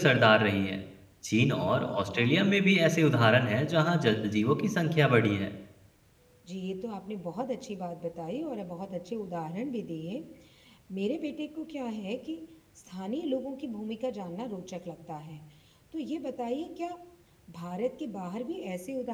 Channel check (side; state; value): both; identical; correlation 1.00